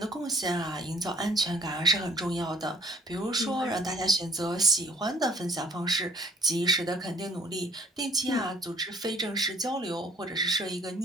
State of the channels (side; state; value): both; normal; correlation 0.57